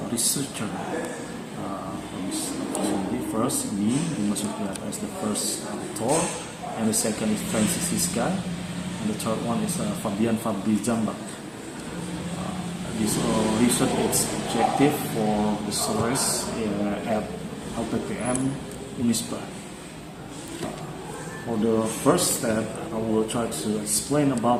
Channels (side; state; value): both; identical; correlation 1.00